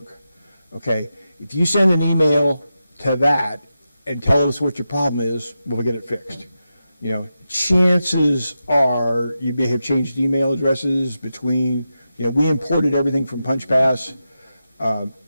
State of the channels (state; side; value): inverted; both; correlation -0.90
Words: Okay, if you send an email to that and tell us what your problem is, we'll get it fixed. You know, chances are you may have changed email addresses between, we imported everything from PunchPass.